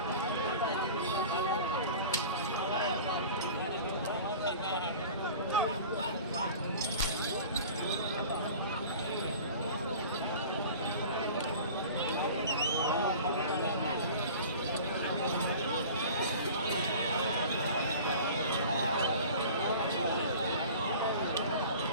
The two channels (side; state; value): both; inverted; correlation -0.41